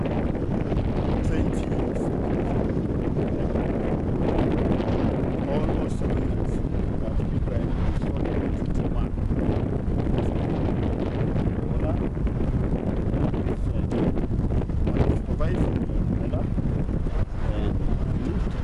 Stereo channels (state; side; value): identical; both; correlation 1.00